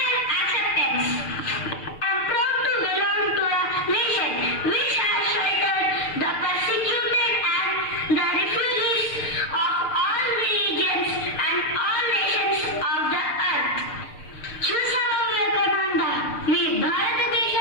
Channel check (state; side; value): late; right; 6.7 ms